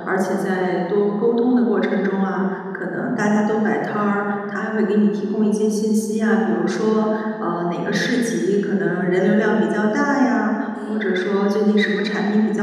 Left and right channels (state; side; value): identical; both; correlation 1.00